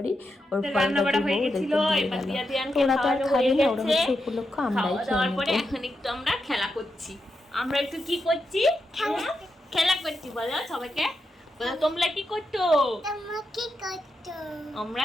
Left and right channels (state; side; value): normal; both; correlation 0.86